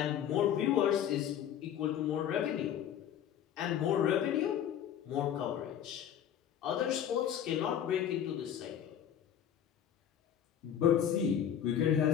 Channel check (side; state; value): right; quieter; 9.6 dB